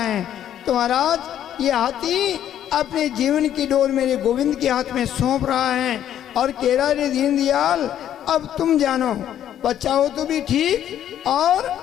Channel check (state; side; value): quieter; right; 10.7 dB